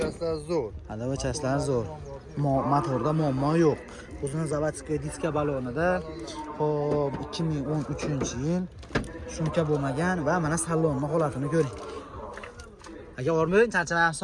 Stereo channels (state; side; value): identical; both; correlation 1.00